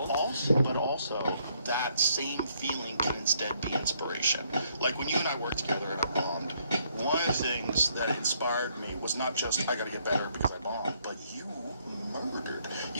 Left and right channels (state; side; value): inverted; both; correlation -0.70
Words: But also, that same feeling can instead be inspiration. Like when you and I worked together and I bombed, one of the things that inspired me was not just, I gotta get better because I bombed, but you murdered.